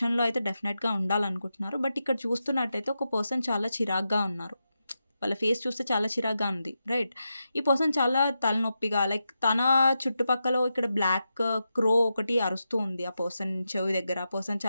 అయితే డెఫినెట్గా ఉండాలనుకుంటున్నారు. బట్ ఇక్కడ చూస్తున్నట్టయితే ఒక పర్సన్ చాలా చిరాగ్గా ఉన్నారు, వాళ్ళ ఫేస్ చూస్తే చాలా చిరాగ్గా ఉంది, రైట్. ఈ పర్సన్ చాలా తలనొప్పిగా, లైక్ తన చుట్టుపక్కల ఇక్కడ బ్లాక్ క్రో ఒకటి అరుస్తూ ఉంది ఆ పర్సన్ చెవి దగ్గర. ఆ పర్సన్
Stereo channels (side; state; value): both; inverted; correlation -0.88